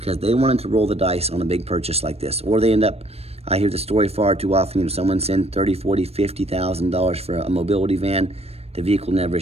they wanted to roll the dice on a big purchase like this. Or they end up, I hear the story far too often, someone send $30,000, $40,000, $50,000 for a mobility van, the vehicle never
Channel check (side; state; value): left; late; 0.29 ms